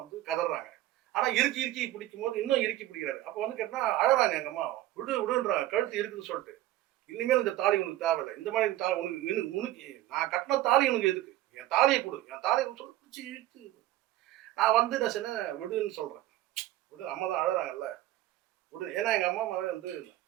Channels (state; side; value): quieter; left; 15.2 dB